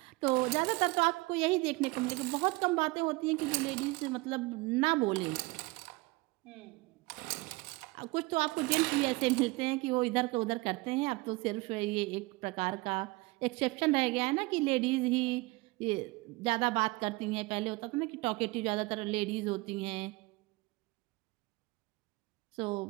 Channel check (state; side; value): quieter; left; 23.4 dB